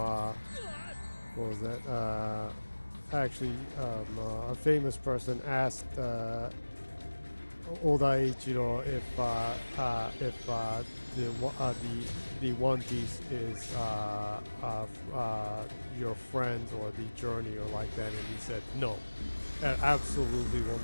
was that? A famous person asked Oda Ichiro if the One Piece is your friends or the journey or like that, and he said no, it absolutely will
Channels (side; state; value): both; inverted; correlation -1.00